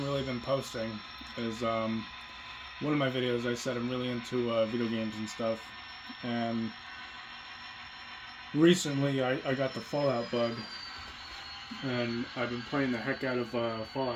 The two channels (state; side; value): identical; both; correlation 1.00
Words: really been posting is one of my videos I said I'm really into video games and stuff, and recently I got the Fallout bug, and I've been playing the heck out of